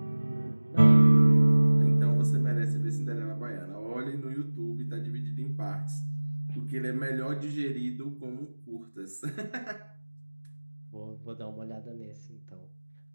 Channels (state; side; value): inverted; both; correlation -1.00